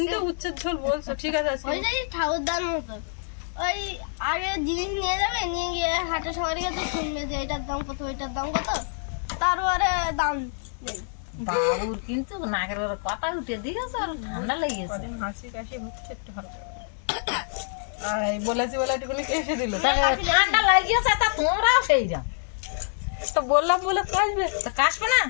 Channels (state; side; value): silent; right; digital silence